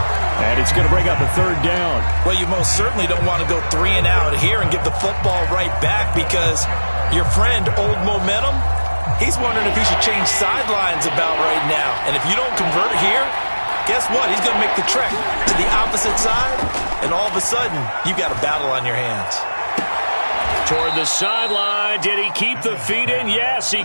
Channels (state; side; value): inverted; both; correlation -1.00